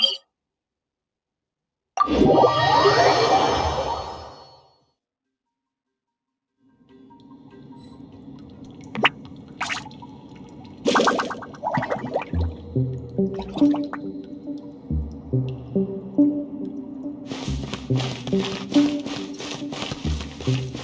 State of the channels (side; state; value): both; identical; correlation 1.00